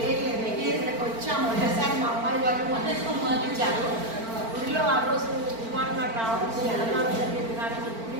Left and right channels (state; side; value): late; left; 4.4 ms